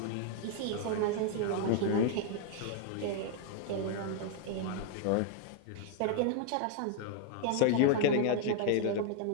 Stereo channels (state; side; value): different; both; correlation 0.00